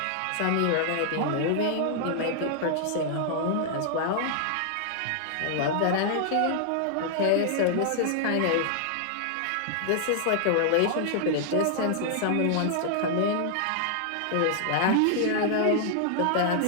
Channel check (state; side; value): different; both; correlation -0.01